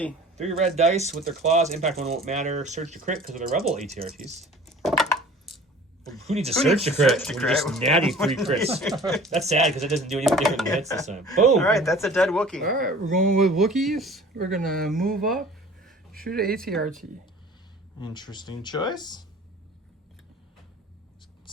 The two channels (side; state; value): both; normal; correlation 0.46